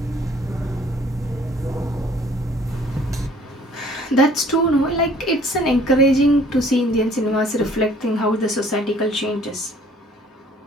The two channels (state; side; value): normal; both; correlation 0.56